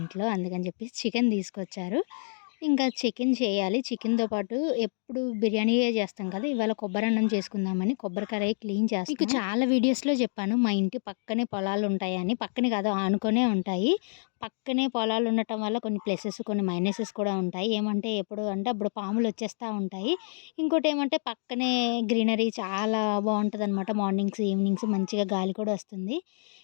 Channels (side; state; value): right; silent; 59 dB below the other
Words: అందుకని చెప్పేసి చికెన్ తీసుకొచ్చారు. ఇంకా చికెన్ చేయాలి. చికెన్‌తో పాటు ఎప్పుడు బిర్యానీయే చేస్తాం కదా! ఇవాళ కొబ్బరన్నం చేసుకుందామని కొబ్బరి కడాయి క్లీన్ చేస్తున్నా. మీకు చాలా వీడియోస్‌లో చెప్పాను మా ఇంటి పక్కనే పొలాలుంటాయని. పక్కనే కాదు ఆనుకునే ఉంటాయి. పక్కనే పొలాలు ఉండటం వల్ల కొన్ని ప్లసెస్, కొన్ని మైనసెస్ కూడా ఉంటాయి. ఏమంటే ఎప్పుడు అంటే అప్పుడు పాములొచ్చేస్తా ఉంటాయి. ఇంకోటేమంటే పక్కనే గ్రీనరీ చాలా బావుంటదనమాట. మార్నింగ్స్, ఈవినింగ్స్ మంచిగా గాలి కూడా వస్తుంది.